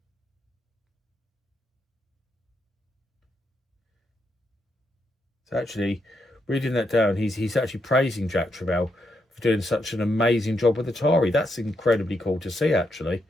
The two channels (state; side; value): normal; both; correlation 0.80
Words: actually, reading that down, he's actually praising Jack Tramiel for doing such an amazing job with Atari. That's incredibly cool to see, actually.